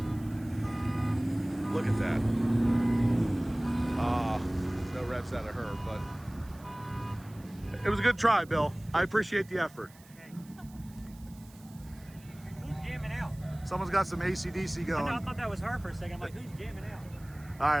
Look at that. No revs out of her, but it was a good try, Bill. I appreciate the effort. Who's jamming out? Someone's got some AC/DC I going. thought that was her for a second. I'm like, who's jamming out? All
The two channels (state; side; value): noise; right; hiss, 25 dB below the sound